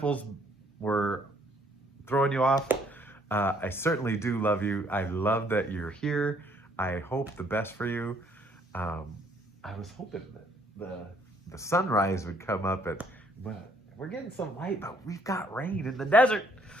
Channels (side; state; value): both; normal; correlation 0.65